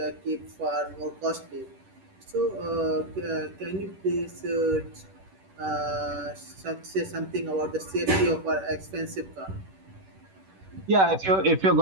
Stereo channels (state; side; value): late; left; 10 ms